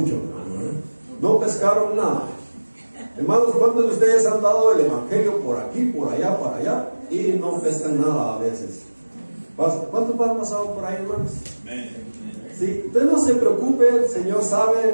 hermano, no pescaron nada. Hermanos, ¿cuántos de ustedes han dado el evangelio por aquí, por allá, para allá, y no pescan nada a veces? ¿Cuántos han pasado por ahí, hermanos? Sí, usted no se preocupe, el Señor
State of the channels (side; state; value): both; inverted; correlation -1.00